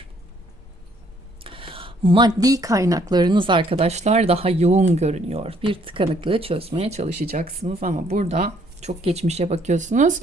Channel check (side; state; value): both; normal; correlation 0.65